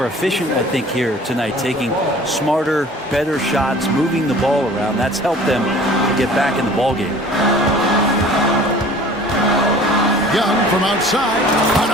efficient, I think, here tonight, taking smarter, better shots, moving the ball around. That's helped them to get back in the ball game. Young from outside,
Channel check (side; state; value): both; normal; correlation 0.47